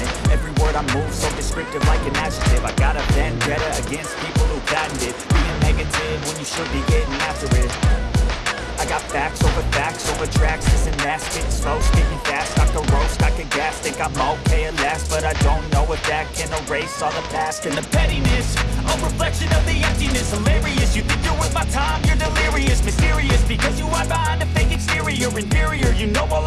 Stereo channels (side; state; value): both; identical; correlation 1.00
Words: Every word I move so descriptive like an adjective. I got a vendetta against people who patented being negative when you should be getting after it. I got facts over tracks. This and that, spitting slow, speaking fast. I can roast, I can gas, think I'm okay at last, but I don't know if that can erase all the past and the pettiness. A reflection of the emptiness, hilarious. You think you're worth my time, you're delirious, mysterious, because you hide behind a fake exterior. Inferior, you know I'll